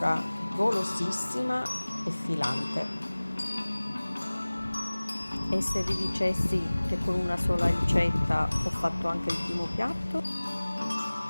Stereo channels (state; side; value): inverted; both; correlation -1.00